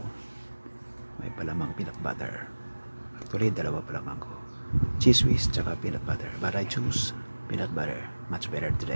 May palamang peanut butter. Actually, dalawa palamang ko. Cheese whiz tsaka peanut butter. But I choose peanut butter. Much better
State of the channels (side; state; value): both; inverted; correlation -1.00